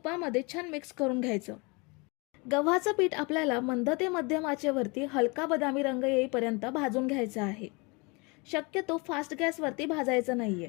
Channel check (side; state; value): right; quieter; 28.7 dB